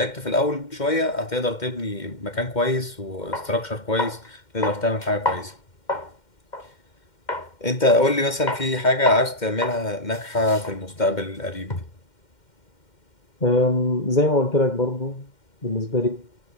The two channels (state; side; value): late; right; 2.1 ms